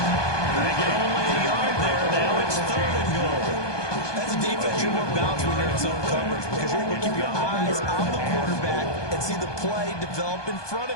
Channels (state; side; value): late; right; 1.2 ms